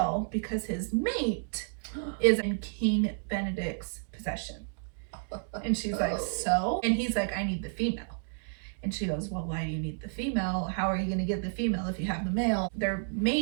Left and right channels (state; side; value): silent; left; digital silence